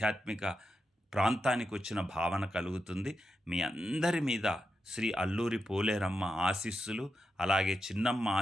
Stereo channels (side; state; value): both; normal; correlation 0.87